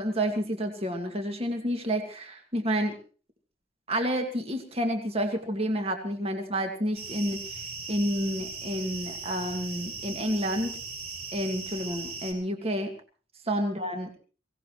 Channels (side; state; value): both; normal; correlation 0.51